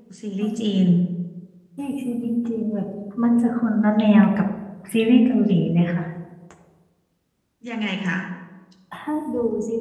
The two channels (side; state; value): both; identical; correlation 1.00